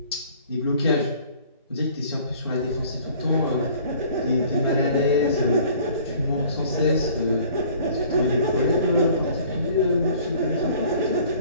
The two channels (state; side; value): inverted; both; correlation -0.52